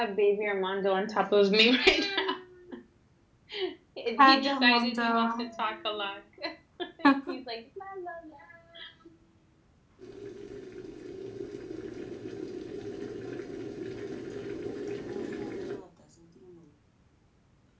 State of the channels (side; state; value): both; identical; correlation 1.00